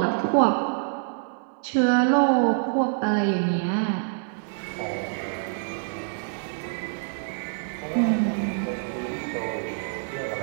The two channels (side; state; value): left; silent; 61 dB below the other